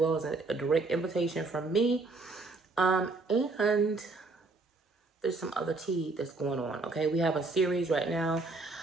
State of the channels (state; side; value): quieter; left; 3.5 dB